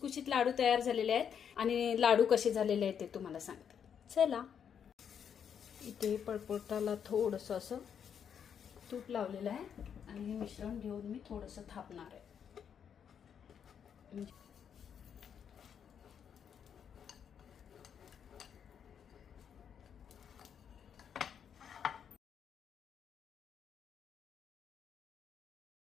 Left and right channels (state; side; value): quieter; right; 7.9 dB